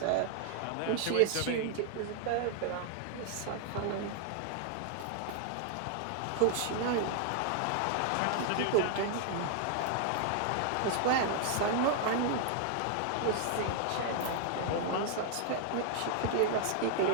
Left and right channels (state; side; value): different; both; correlation 0.00